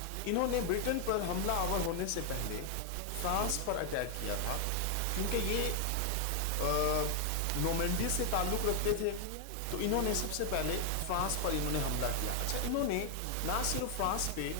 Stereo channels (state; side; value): different; both; correlation 0.00